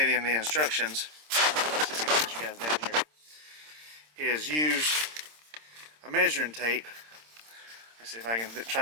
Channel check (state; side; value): late; left; 26 ms